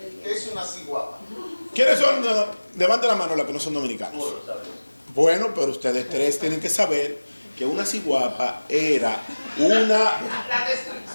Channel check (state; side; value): inverted; both; correlation -1.00